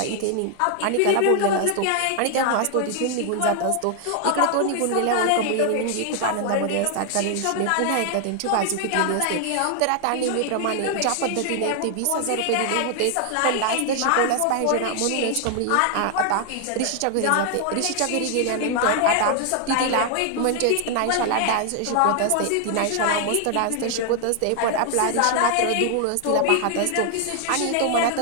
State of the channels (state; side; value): different; both; correlation 0.00